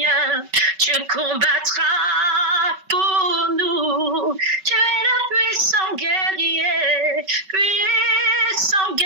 tu combattras pour nous. Tu es le puissant guerrier, puissant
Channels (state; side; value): late; left; 5.2 ms